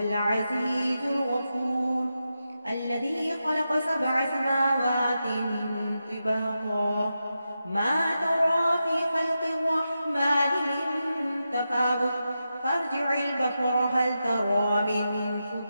الغفور، الذي خلق 7 سماوات طباقا ما ترى في خلق الرحمن من تفاوت فارجع البصر هل ترى من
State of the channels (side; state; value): both; inverted; correlation -0.89